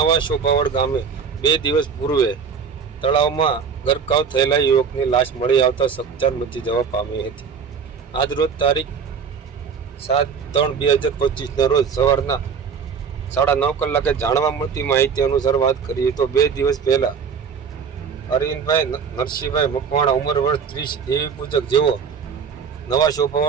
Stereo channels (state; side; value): quieter; left; 6.4 dB